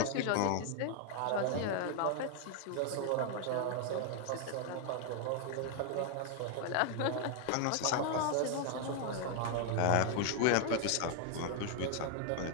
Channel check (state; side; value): different; both; correlation 0.00